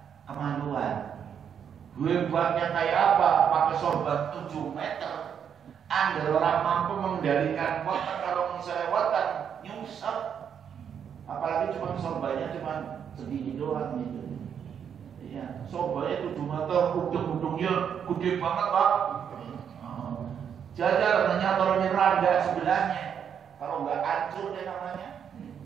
kemaluan. Hebatnya kayak apa? Pakai sorban 7 meter. Angger orang mampu mengendalikan weteng kalau misalnya weteng nyungsep. Apalagi cuma sorbannya cuma segini doang gitu. Ya, sorbannya 7 meter, ujung-ujungnya gede banget Pak. Jajar menyatornya randa sebelahnya. Kalau nggak hancur deh namanya.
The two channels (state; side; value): quieter; left; 8.0 dB